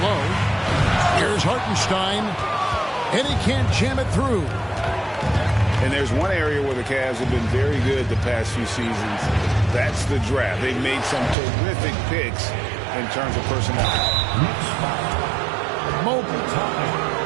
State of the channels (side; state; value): left; drops out; at 11.4 s